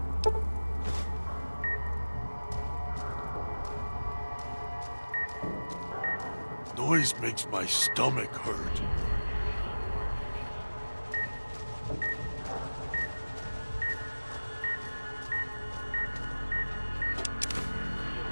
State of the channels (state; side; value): inverted; both; correlation -1.00